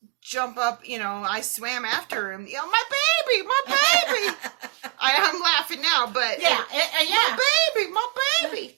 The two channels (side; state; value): left; quieter; 27.0 dB